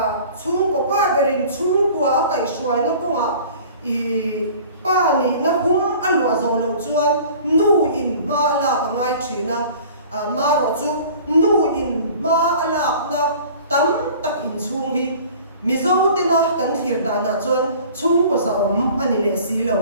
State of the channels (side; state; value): both; inverted; correlation -0.46